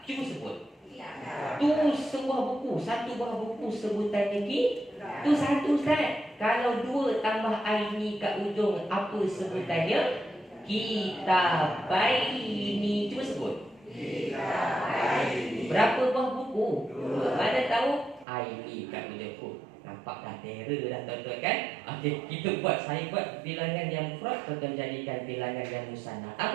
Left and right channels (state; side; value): drops out; left; at 18.2 s